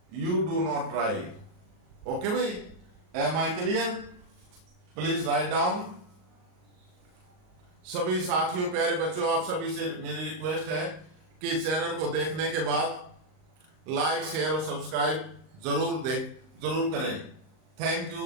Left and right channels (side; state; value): left; late; 39 ms